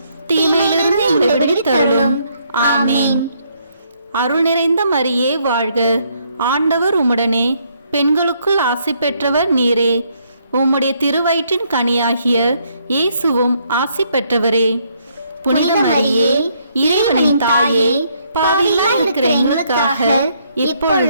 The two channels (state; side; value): inverted; both; correlation -0.71